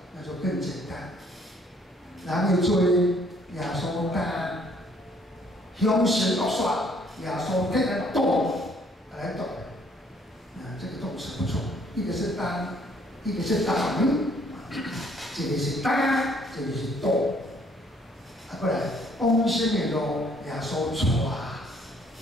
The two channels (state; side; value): normal; both; correlation 0.63